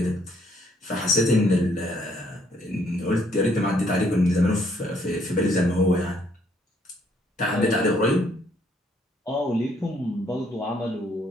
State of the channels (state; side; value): normal; both; correlation 0.68